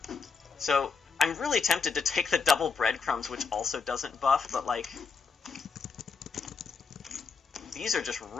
So, I'm really tempted to take the double breadcrumbs, which also doesn't buff, but, like... These are just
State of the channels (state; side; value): quieter; right; 5.1 dB